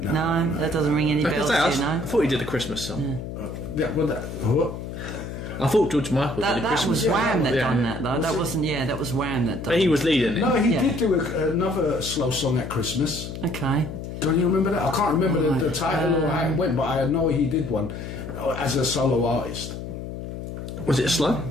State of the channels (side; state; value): left; noise; hum, 8 dB below the sound